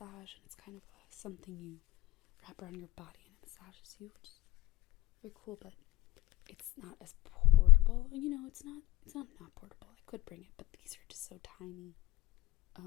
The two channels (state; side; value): quieter; right; 17.3 dB